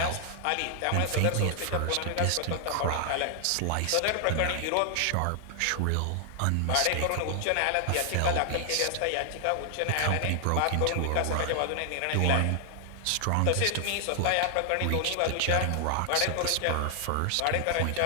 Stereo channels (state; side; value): different; both; correlation 0.00